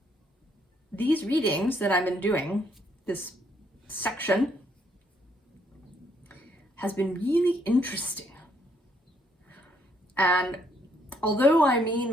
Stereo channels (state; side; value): normal; both; correlation 0.70